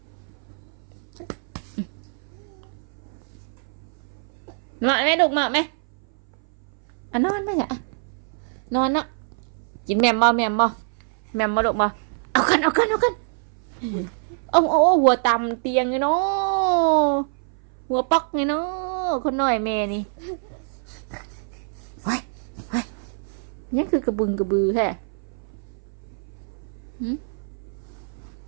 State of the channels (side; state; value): left; silent; 59 dB below the other